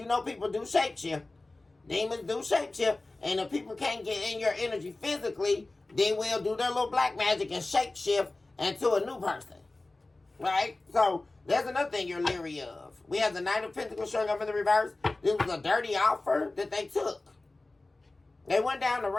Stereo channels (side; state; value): right; quieter; 3.1 dB